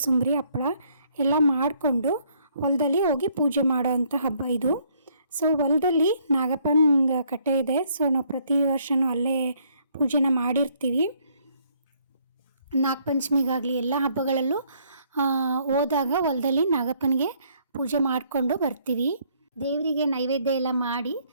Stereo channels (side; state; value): both; inverted; correlation -0.67